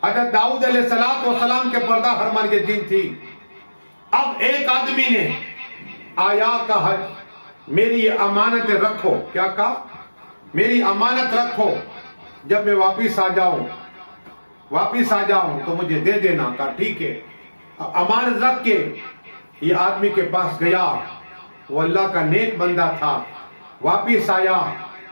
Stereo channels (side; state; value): both; inverted; correlation -1.00